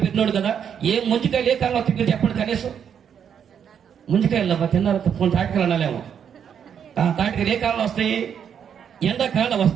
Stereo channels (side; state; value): left; quieter; 8.1 dB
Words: పెట్టినాడు కదా. ఏ ముంజికాయలు ఏ కాలంలో తిరిగి చెప్పండి. కనీసం ముంజికాయలు తిన్నారు తాటికాయలు అనాలేమో. తాటికాయలు ఏ కాలంలో వస్తాయి? ఎండాకాలం